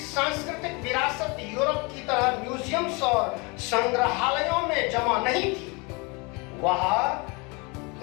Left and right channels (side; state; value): right; quieter; 29.1 dB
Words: विरासत यूरोप की तरह म्यूजियम्स और संग्रहालयों में जमा नहीं थी। वह